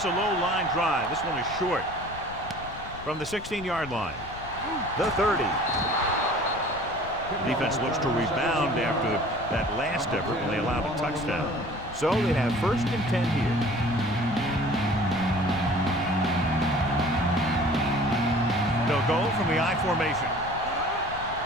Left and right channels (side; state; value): left; noise; rumble, 15 dB below the sound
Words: a low line drive. This one is short. From the 16-yard line. The 30. The defense looks to rebound after that last effort when they allowed a touchdown. So they have 1st and 10 here. They'll go from the I formation.